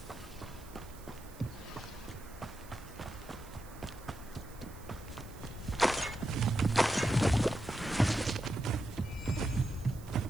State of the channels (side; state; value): right; noise; hiss, 21 dB below the sound